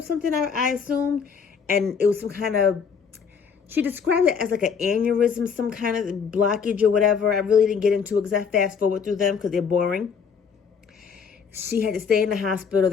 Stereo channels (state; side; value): quieter; right; 6.3 dB